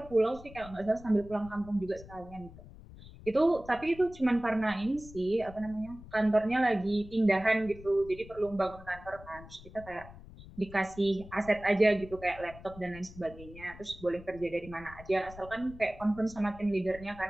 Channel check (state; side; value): noise; left; rumble, 17 dB below the sound